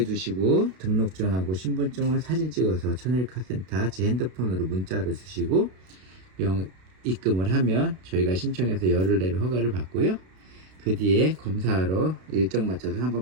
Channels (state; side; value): late; left; 32 ms